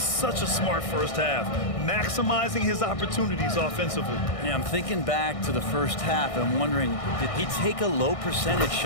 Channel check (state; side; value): late; right; 1.6 ms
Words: a smart first half, maximizing his opportunities offensively. Yeah, I'm thinking back to the first half and wondering, did he take a low percentage